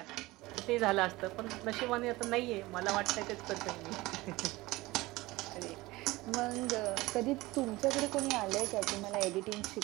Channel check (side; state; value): left; quieter; 20.0 dB